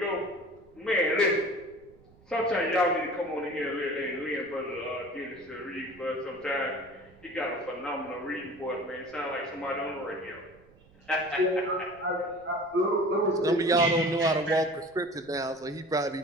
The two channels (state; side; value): noise; right; rumble, 27 dB below the sound